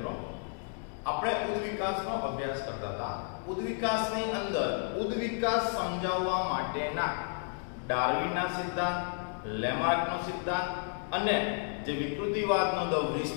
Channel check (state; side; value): silent; right; 56 dB below the other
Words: આપણે ઉદ્વિકાસનો અભ્યાસ કરતા હતા. ઉદ્વિકાસની અંદર ઉદ્વિકાસ સમજાવવા માટેના ડાર્વિનના સિદ્ધાંત, લેમાર્કનો સિદ્ધાંત અને જે વિકૃતિવાદનો ધ